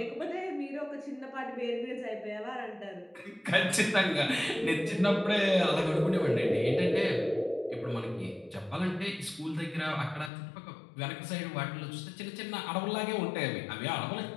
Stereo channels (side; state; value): right; drops out; at 10.3 s